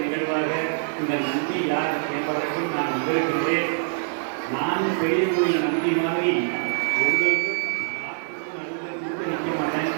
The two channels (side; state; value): left; silent; digital silence